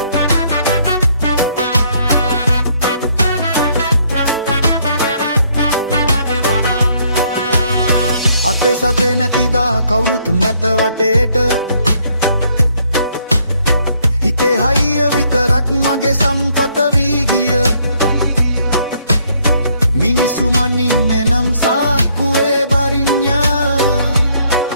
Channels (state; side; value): inverted; both; correlation -0.68